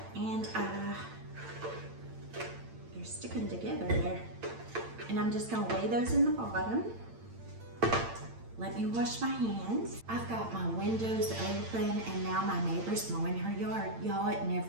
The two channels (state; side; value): late; left; 8.8 ms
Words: and they're sticking together there. And I'm just gonna lay those in the bottom. Let me wash my hands. I've got my windows open, and now my neighbor's mowing her yard. Y'all, it